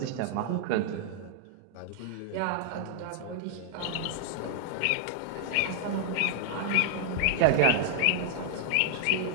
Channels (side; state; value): both; different; correlation 0.00